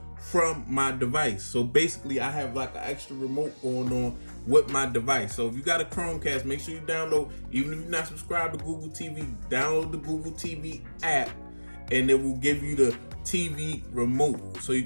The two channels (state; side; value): inverted; both; correlation -1.00